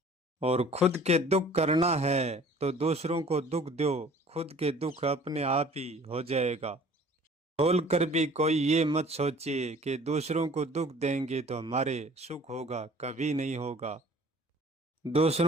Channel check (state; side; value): normal; both; correlation 0.50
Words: और खुद के दुख करना है तो दूसरों को दुख दो, खुद के दुख अपने आप ही हो जाएगा। बोल कर भी कोई ये मत सोचिए कि दूसरों को दुख देंगे तो हमारे सुख होगा, कभी नहीं होगा।